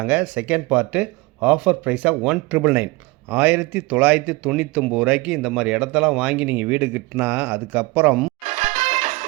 செகண்ட் பார்ட்டு ஆஃபர் ப்ரைஸாக 1,999 1999 இந்த மாதிரி இடத்தெல்லாம் வாங்கி நீங்கள் வீடு கட்டினா அதுக்கப்புறம்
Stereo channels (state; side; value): quieter; left; 23.4 dB